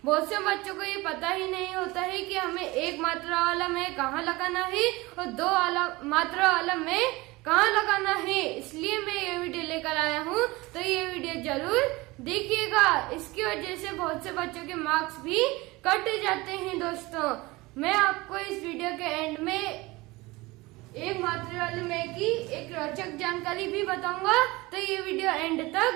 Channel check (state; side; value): quieter; left; 21.8 dB